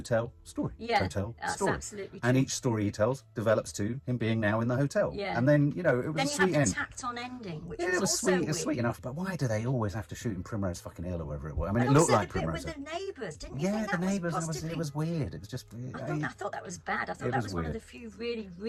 story, hotel, story. Absolutely true. And each story he tells develops to him being now in the hotel. Yeah. And then, it was a sweet end. Then you have the tacked-on ending, which was also sweet. weird. It's sweet enough, but why do they always have to shoot in Primrose fucking Hill or wherever it was? I mean, it looked like Primrose Hill. And also the bit with the neighbours, didn't you think the that neighbours, possibly... it was weird. It was just... I thought that was bad. I thought that was one of the few really,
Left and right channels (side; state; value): both; identical; correlation 1.00